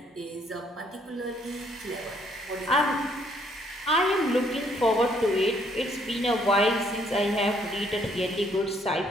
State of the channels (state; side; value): normal; both; correlation 0.67